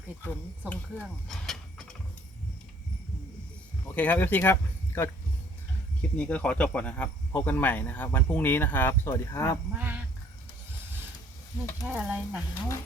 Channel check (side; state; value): both; normal; correlation 0.59